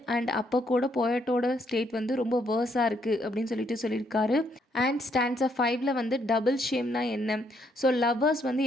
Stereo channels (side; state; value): both; normal; correlation 0.72